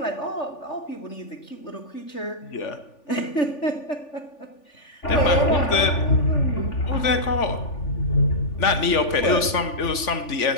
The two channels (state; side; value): late; right; 3.4 ms